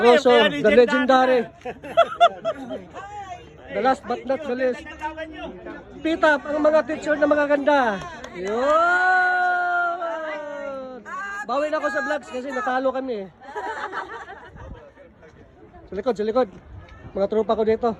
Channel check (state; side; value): identical; both; correlation 1.00